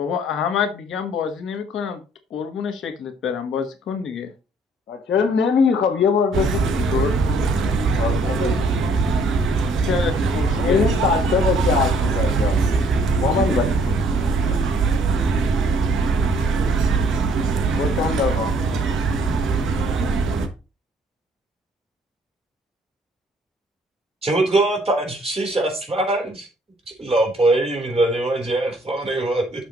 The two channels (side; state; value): both; normal; correlation 0.61